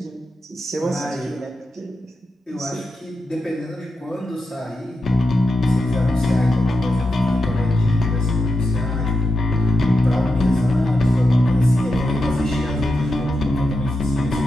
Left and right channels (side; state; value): both; normal; correlation 0.88